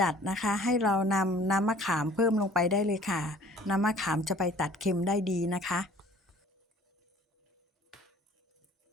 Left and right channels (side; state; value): both; normal; correlation 0.51